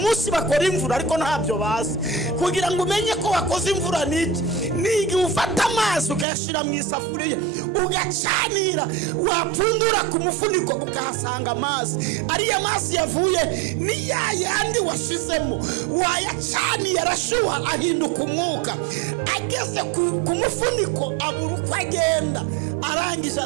bakora imvura ariko ntabyo bazi. Kugira ngo umenye ko wakoze imvura niki, nigi ufata amazi ukayashira mu isafuriya ugacanira, wapfundura ku mufuniko ukahasanga amazi. Ariya mazi yavuye ni yandi washizemo, wayacaniye arashuha ahinduka umwuka. Ageze ku mufuniko abura uko agenda, arangije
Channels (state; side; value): drops out; left; at 6.2 s